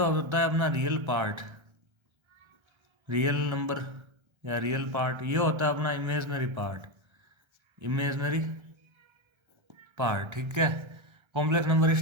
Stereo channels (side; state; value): left; late; 1.3 ms